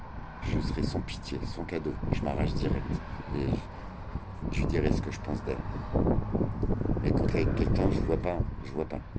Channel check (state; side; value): identical; both; correlation 1.00